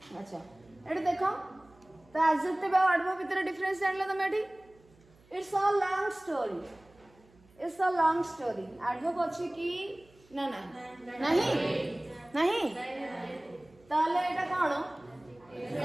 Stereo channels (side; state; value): right; noise; hum, 29 dB below the sound